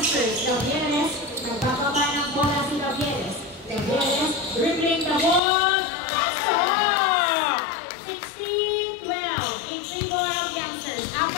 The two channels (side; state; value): right; drops out; at 5.4 s